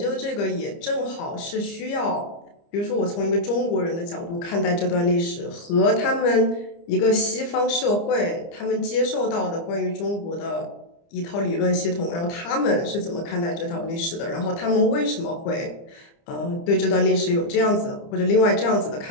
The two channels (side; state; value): right; late; 30 ms